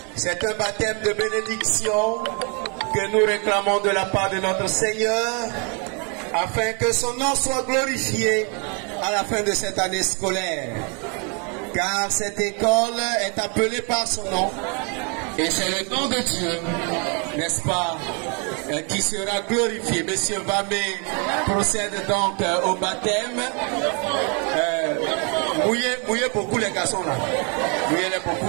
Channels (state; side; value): quieter; left; 35.6 dB